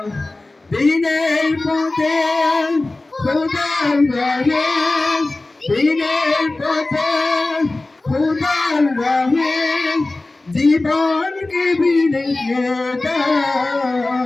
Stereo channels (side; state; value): right; quieter; 3.0 dB